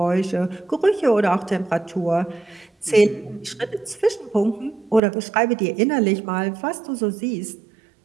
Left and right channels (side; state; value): left; drops out; at 5.0 s